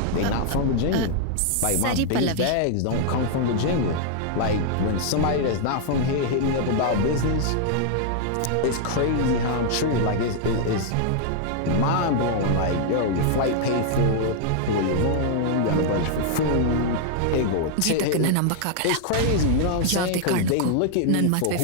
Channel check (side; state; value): both; different; correlation -0.01